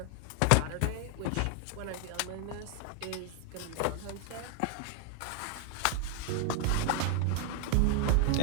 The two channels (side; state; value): both; different; correlation 0.01